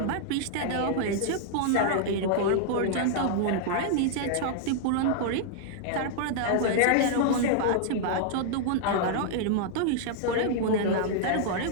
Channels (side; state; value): both; different; correlation -0.01